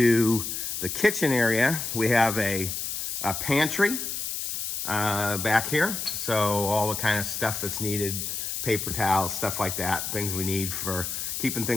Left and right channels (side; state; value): left; noise; hiss, 4 dB below the sound